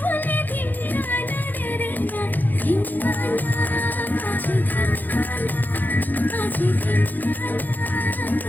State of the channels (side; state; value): right; late; 0.086 ms